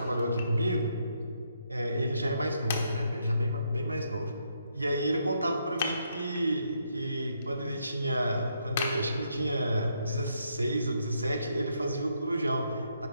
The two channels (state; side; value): inverted; both; correlation -0.76